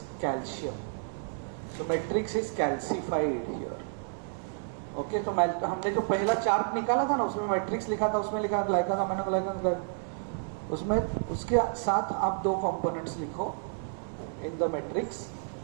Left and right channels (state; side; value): silent; left; digital silence